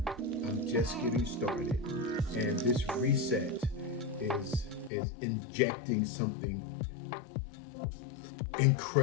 I'm just getting started. And this reset is injecting something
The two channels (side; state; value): right; drops out; at 4.9 s